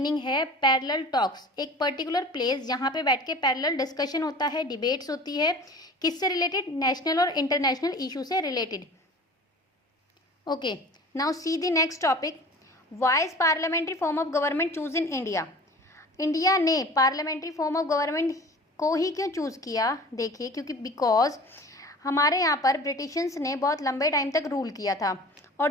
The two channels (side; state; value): both; normal; correlation 0.41